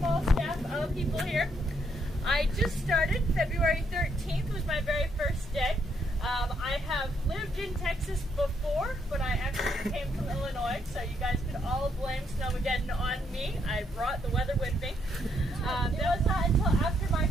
staff of people here. I just started. February 13th was my very first day. I have lived in Texas before, but I actually came from Illinois, so you guys could all blame Snowmageddon on me. I brought the weather with me. It was not until after my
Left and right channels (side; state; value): both; normal; correlation 0.74